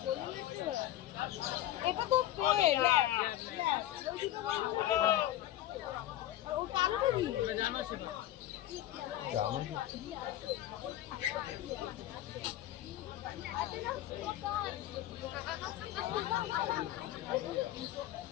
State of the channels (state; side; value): quieter; right; 13.6 dB